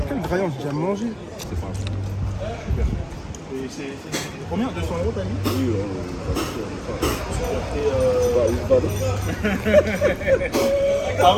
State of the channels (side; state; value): both; identical; correlation 1.00